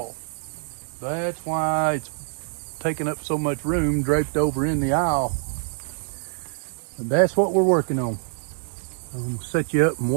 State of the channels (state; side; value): silent; left; digital silence